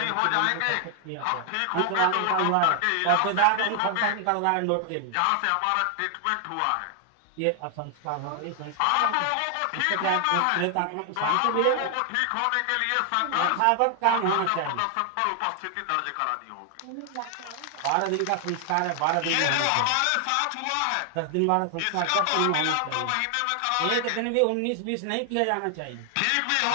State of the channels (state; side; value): different; both; correlation 0.00